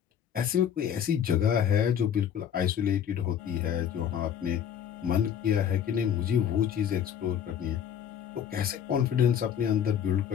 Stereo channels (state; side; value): quieter; right; 8.8 dB